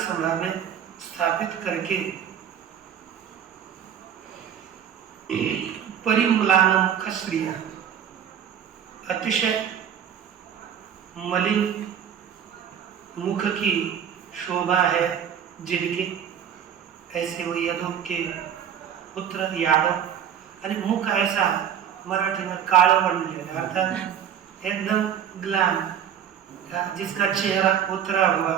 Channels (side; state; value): left; quieter; 8.9 dB